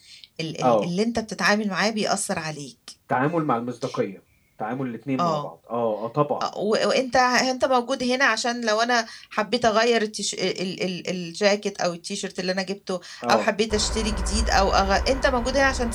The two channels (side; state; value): both; identical; correlation 1.00